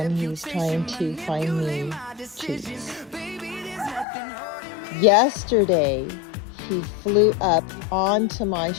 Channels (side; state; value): right; drops out; at 4.0 s